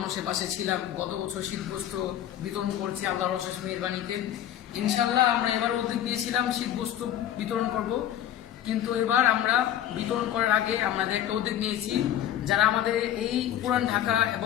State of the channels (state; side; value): quieter; right; 11.3 dB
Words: পাশে ছিলাম। গত বছর শীতবস্ত্র বিতরণ করছি আল্লাহর অশেষ মেহেরবানিতে। ইনশাল্লাহ আমরা এবার উদ্যোগ নিয়েছিলাম শীতবস্ত্র বিতরণ করব, কিন্তু এবার আমরা বিতরণ করার আগে আমাদের একটা উদ্যোগ নিয়েছি, যারা আমাদের এই পুরান ঢাকা